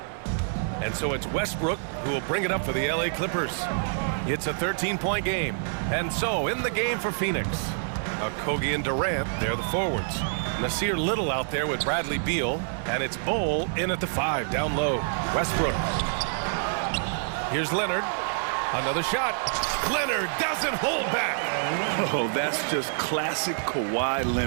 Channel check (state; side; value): silent; left; 60 dB below the other